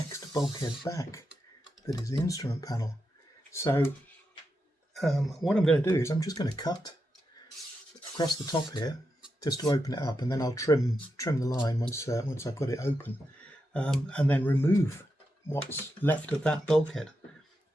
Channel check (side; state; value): both; normal; correlation 0.86